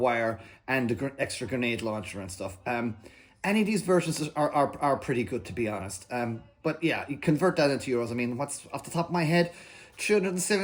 and the extra grenade launcher and stuff. Any of these versions are pretty good, to be honest. But yeah, you convert that into euros. I mean, what's off the top of my head?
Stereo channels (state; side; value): identical; both; correlation 1.00